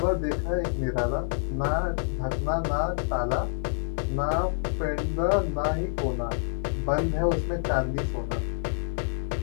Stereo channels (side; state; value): right; silent; digital silence